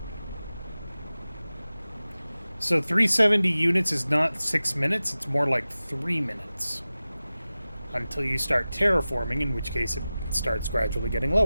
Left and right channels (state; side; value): inverted; both; correlation -0.96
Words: So 370 units is not 6 minutes, it's more like 3 minutes. Until you start terraforming, in which case it starts gradually getting